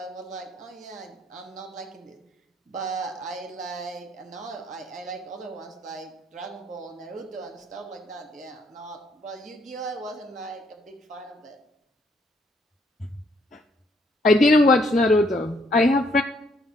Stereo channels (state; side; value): normal; both; correlation 0.69